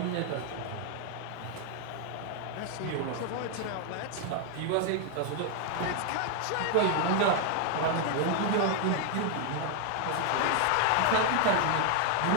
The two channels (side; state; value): both; different; correlation 0.00